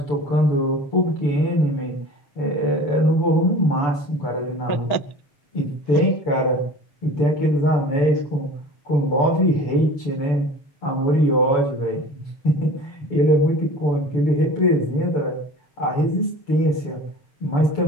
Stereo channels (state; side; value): late; right; 6.9 ms